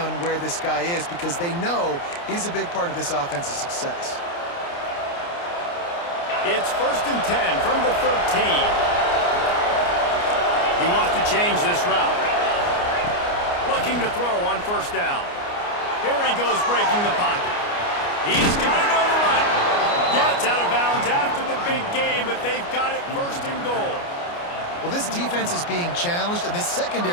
where this guy is because they know he's a big part of this offense's success. It's 1st and 10 from the 13. He wants to change this route. Looking to throw on first down. Here he goes breaking the pocket. He's got it on the run. Gets out of bounds after the big game, but they've got it 1st and goal. Well, this defense is being challenged, and this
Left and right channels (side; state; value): right; late; 29 ms